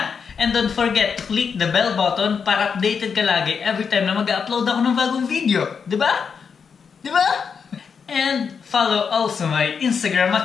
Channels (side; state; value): right; quieter; 6.2 dB